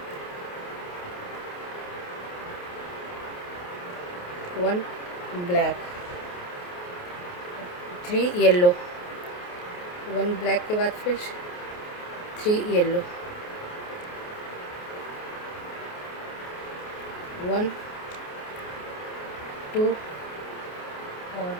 1 ब्लैक, 3 येलो, 1 ब्लैक के बाद फिर 3 येलो, 1 2 और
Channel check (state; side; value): late; right; 28 ms